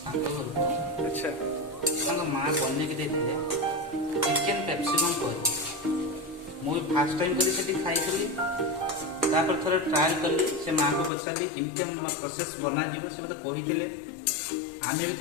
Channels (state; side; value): drops out; right; at 11.1 s